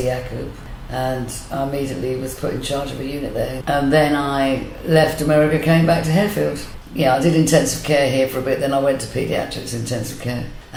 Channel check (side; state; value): both; identical; correlation 1.00